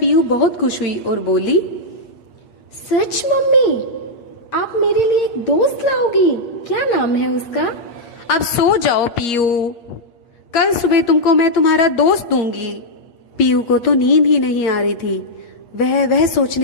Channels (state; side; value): late; right; 8.5 ms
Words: बहुत खुश हुई और बोली, सच मम्मी, आप मेरे लिए एक दोस्त लाओगी? क्या नाम है उसका? अब सो जाओ पीयू, कल सुबह तुमको मैं तुम्हारा दोस्त दूंगी। पीयू को तो नींद ही नहीं आ रही थी। वह